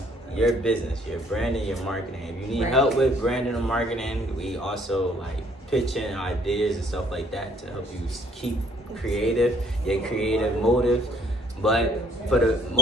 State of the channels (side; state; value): both; normal; correlation 0.62